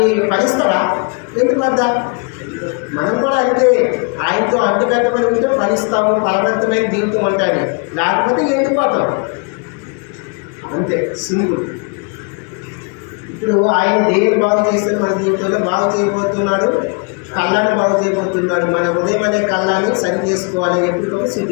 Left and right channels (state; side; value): quieter; right; 35.4 dB